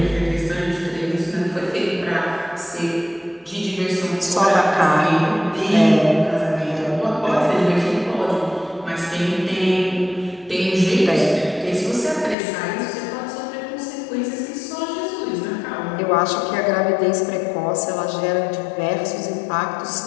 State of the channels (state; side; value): drops out; right; at 12.4 s